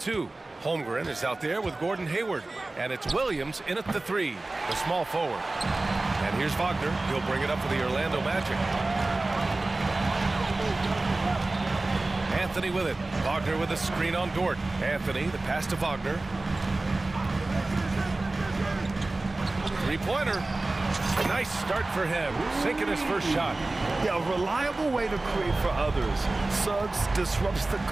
Holmgren is out there with Gordon Hayward. And it's Williams in at the 3, the small forward. And here's Wagner. He'll bring it up for the Orlando Magic. Anthony with it. Wagner with a screen on Dort. Anthony, the pass to Wagner. Three-pointer. Nice start for him, sinking his first shot. Yeah, a reliable way to create for others. Suggs disrupts the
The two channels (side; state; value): left; quieter; 3.0 dB